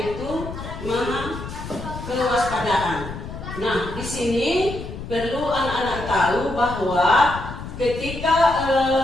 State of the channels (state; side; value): noise; left; rumble, 9 dB below the sound